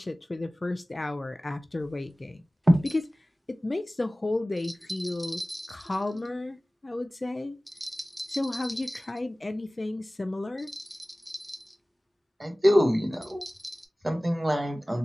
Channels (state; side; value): normal; both; correlation 0.98